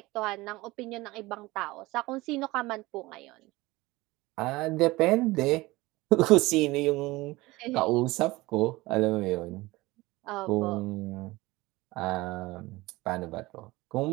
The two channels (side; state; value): left; quieter; 20.5 dB